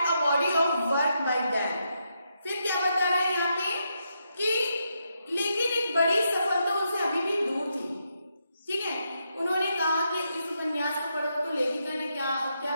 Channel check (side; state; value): both; inverted; correlation -0.81